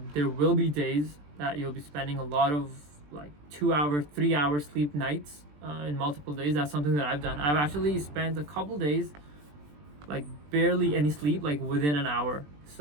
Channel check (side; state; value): left; late; 20 ms